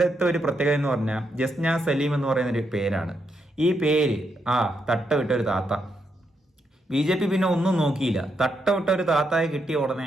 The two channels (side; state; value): both; normal; correlation 0.80